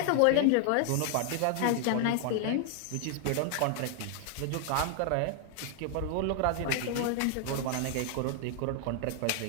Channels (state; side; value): different; both; correlation 0.00